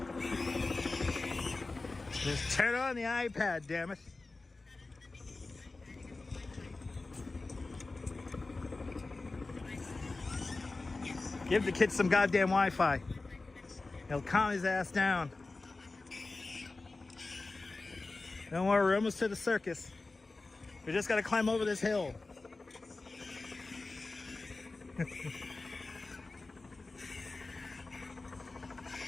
Just turn on the iPad, damn it. Give the kid some goddamn Wi-Fi. He'll calm his ass down. Don't worry, we're almost to the circus. We just gotta climb over this hill.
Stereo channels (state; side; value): quieter; right; 3.5 dB